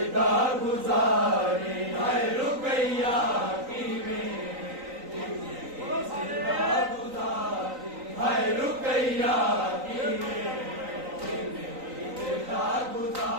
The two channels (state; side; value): late; left; 3.9 ms